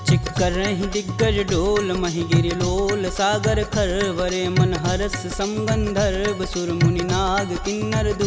चिक्करहि दिग्गज डोल, महि गिरि लोल सागर खरवरे। मन हरस समगंधर्व सुर मुनि नाग, किन्नर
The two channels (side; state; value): both; identical; correlation 1.00